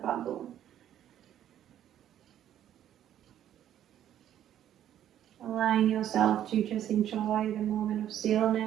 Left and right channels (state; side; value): quieter; left; 11.1 dB